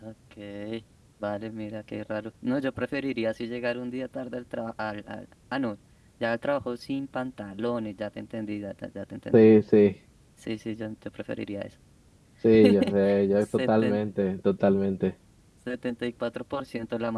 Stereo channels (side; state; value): both; identical; correlation 1.00